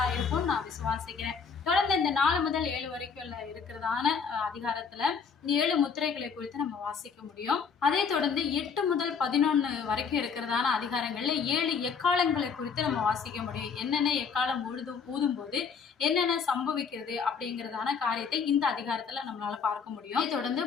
இருக்கும்னு நான் விசுவாசிக்கிறேன். தொடர்ந்து இந்த 4 முதல் 7 வரைக்கும் இருக்கிறதான அதிகாரத்துல இந்த 7 முத்திரைகளை குறித்து நம்ம வாசிக்க முடியும். அதே தொடர்ந்து 8 முதல் 11 வரைக்கும் இருக்கிறதான அதிகாரங்கள்ல 7 எக்காலங்களை குறித்து நம்ம வாசிக்க முடியும். என்னென்ன எக்காலம் ஊதும் போது என்னென்ன சம்பவிக்கிறது அப்படிங்கிறதான காரியத்தை இந்த அதிகாரத்துல நம்மளால பார்க்க முடியும். அதை தொடர்ந்து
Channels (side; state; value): right; quieter; 6.0 dB